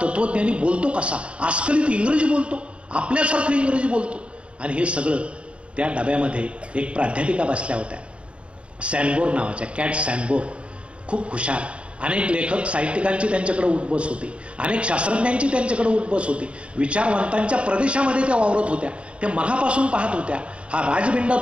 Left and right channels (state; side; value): late; left; 0.060 ms